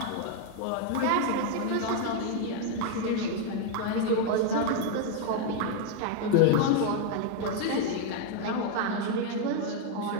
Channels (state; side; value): different; both; correlation 0.00